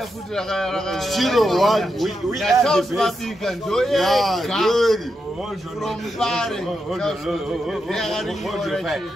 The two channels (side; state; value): both; normal; correlation 0.85